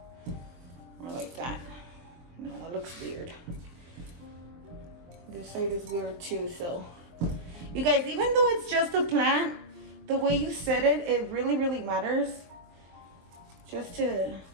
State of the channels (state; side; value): late; left; 23 ms